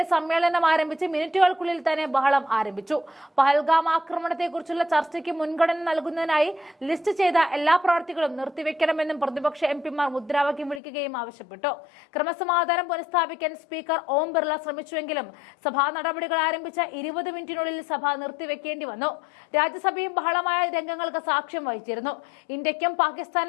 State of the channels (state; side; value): drops out; right; at 10.8 s